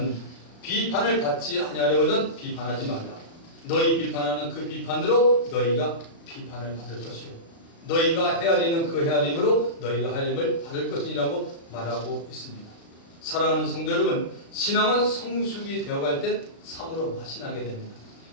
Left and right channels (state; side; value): late; right; 36 ms